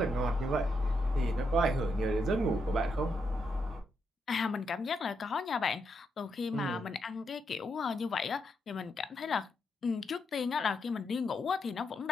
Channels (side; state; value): both; normal; correlation 0.81